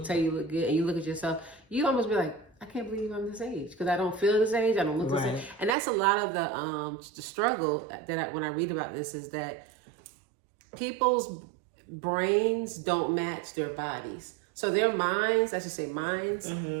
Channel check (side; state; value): left; drops out; at 5.8 s